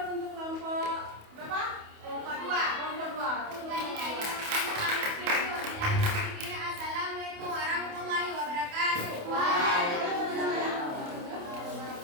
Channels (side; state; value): left; late; 28 ms